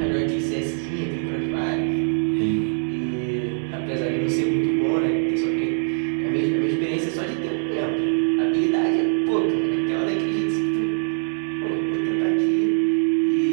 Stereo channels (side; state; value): left; silent; digital silence